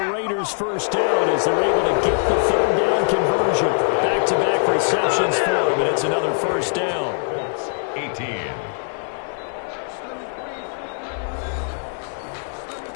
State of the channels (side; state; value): right; silent; 58 dB below the other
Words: Raiders' first down as they're able to get the 3rd down conversion. Back-to-back receptions for him, and it's another first down. 18.